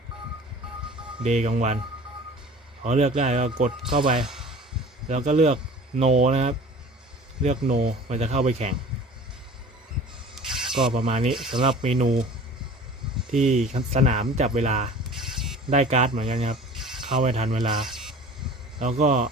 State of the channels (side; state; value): both; normal; correlation 0.43